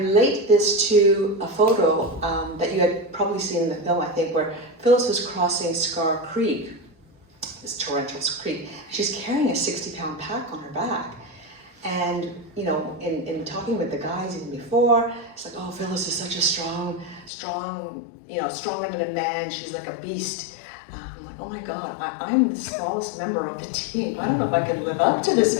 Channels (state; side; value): drops out; right; at 17.3 s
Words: this to a photo that you had probably seen in the film, I think, where Phyllis was crossing Scar Creek, this torrential creek. She's carrying a 60-pound pack on her back. And, you know, in talking with the guys even before, it's like, oh, Phyllis is such a strong, you know, stronger than a man. She's like a beast. I'm like, oh my God, I'm the smallest member of the team. I don't know if I can live up to this,